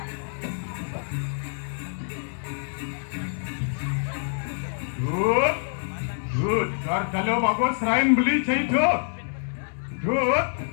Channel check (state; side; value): silent; right; digital silence